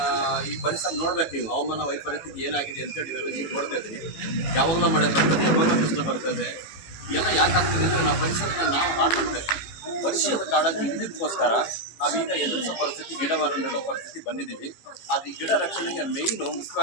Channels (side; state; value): right; late; 18 ms